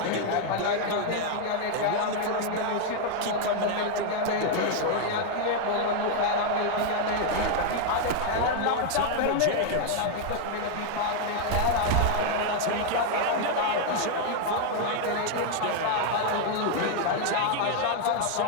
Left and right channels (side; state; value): both; different; correlation 0.00